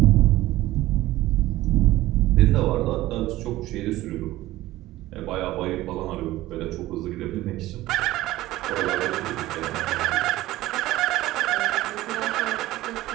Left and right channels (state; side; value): quieter; left; 16.6 dB